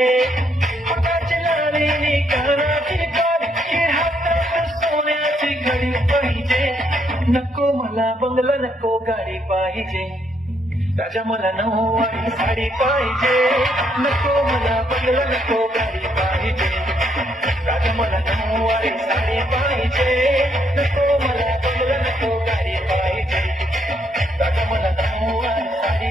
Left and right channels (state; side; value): normal; both; correlation 0.73